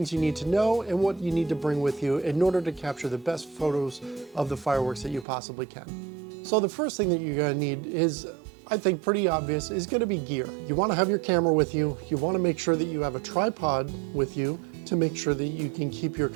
you need to know and what you need to bring with you in order to capture the best photos of the fireworks that you possibly can. So the first thing that you're going to need is, I think pretty obvious, is going to be gear. You want to have your camera with you. You want to make sure that you have a tripod with you to make sure that you can keep your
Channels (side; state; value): left; drops out; at 5.2 s